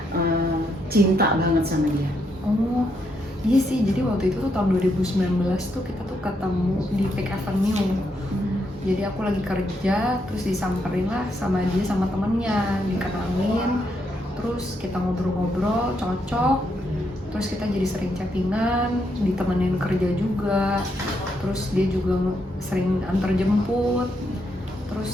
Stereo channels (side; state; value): both; normal; correlation 0.78